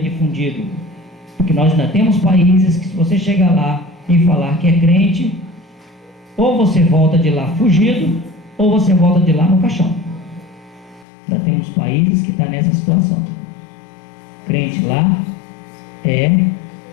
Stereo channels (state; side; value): drops out; right; at 11.1 s